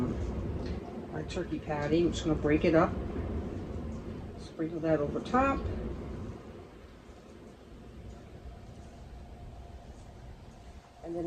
patty. I'm just going to break it up, sprinkle that over top. And then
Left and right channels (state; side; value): identical; both; correlation 1.00